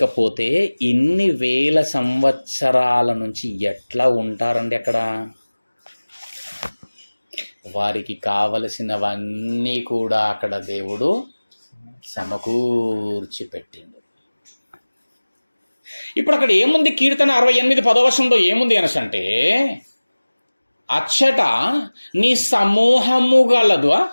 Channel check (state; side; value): inverted; both; correlation -1.00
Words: ఇన్ని వేల సంవత్సరాల నుంచి ఎట్లా ఉంటారండి అక్కడ? వారికి కావలసినవన్నీ కూడా అక్కడ దేవుడు సమకూర్చి పెట్టిండు. ఇప్పుడు అక్కడ ఏముంది? కీర్తన 68:10 ఏముంది అనసంటే, అచ్చట నీ సమూహము గలదు.